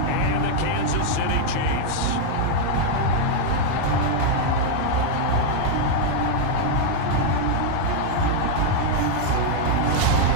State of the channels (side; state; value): both; different; correlation 0.00